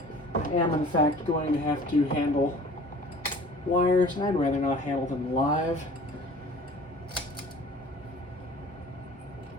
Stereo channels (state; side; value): normal; both; correlation 0.47